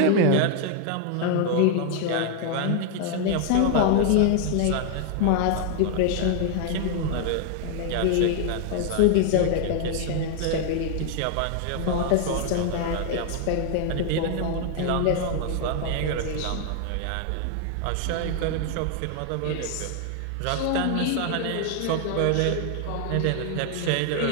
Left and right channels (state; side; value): different; both; correlation 0.00